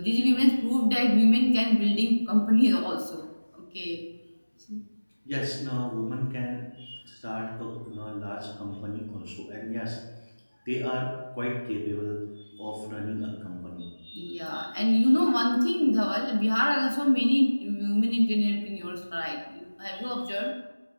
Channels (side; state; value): both; inverted; correlation -1.00